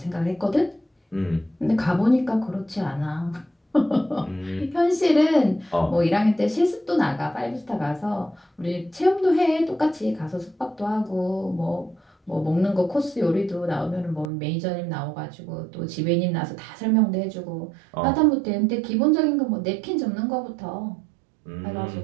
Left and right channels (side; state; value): left; drops out; at 14.3 s